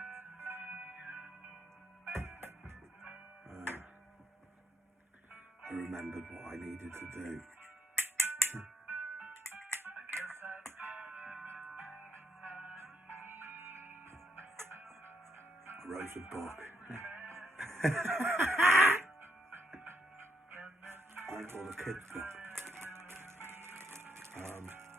I remembered what I needed to do. I wrote a book. I called a kid's book.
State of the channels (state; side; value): normal; both; correlation 0.76